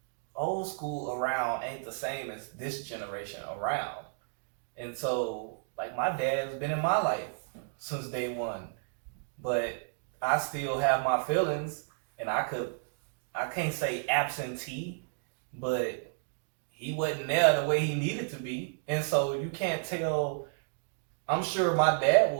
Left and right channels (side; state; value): left; silent; digital silence